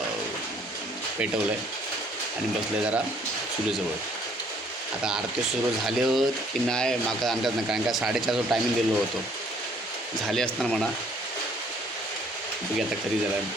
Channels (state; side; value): normal; both; correlation 0.61